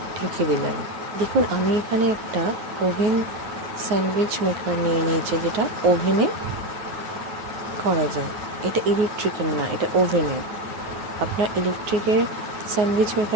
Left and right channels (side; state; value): left; late; 9.4 ms